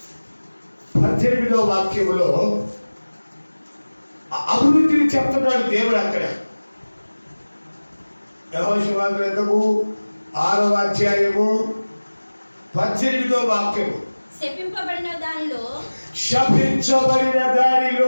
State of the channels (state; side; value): inverted; both; correlation -1.00